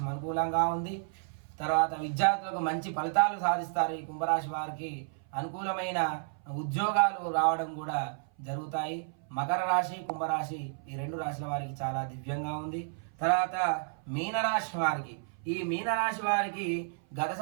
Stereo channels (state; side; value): silent; left; 55 dB below the other